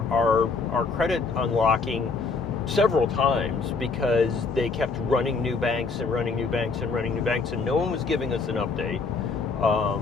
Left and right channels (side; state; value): right; quieter; 4.4 dB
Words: credit unlocking several times because they kept running new banks and running new banks and running new banks, and no one was giving us an update.